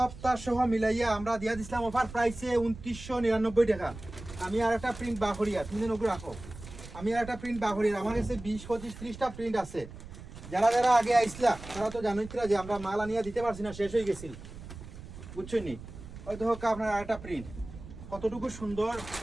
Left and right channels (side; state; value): right; noise; rumble, 14 dB below the sound